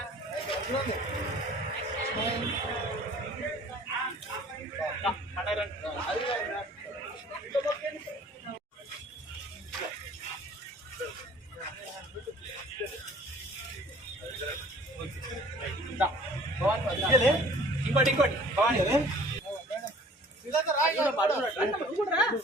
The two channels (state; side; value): normal; both; correlation 0.50